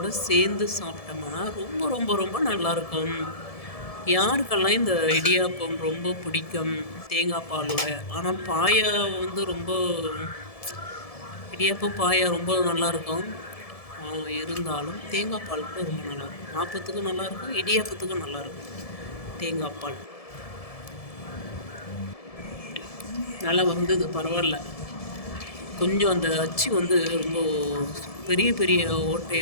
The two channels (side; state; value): right; late; 1.7 ms